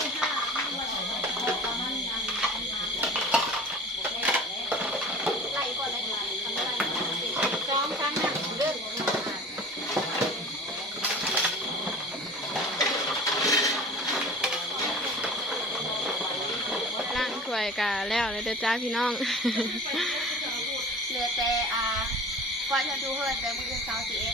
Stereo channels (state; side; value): normal; both; correlation 0.40